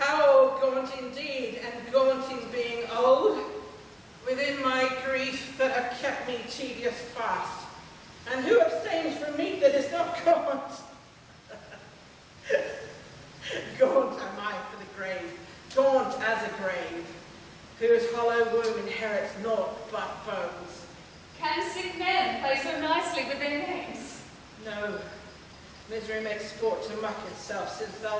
gaunt indeed, and gaunt in being old, within my grief that have kept me tedious fast. And who abstains from meat that is not gaunt? Gaunt am I for the grave, gaunt as a grave, whose hollow womb inherits naught but bones. Can sick men play so nicely with their names? No, misery makes sport to mock itself, since thou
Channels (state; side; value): identical; both; correlation 1.00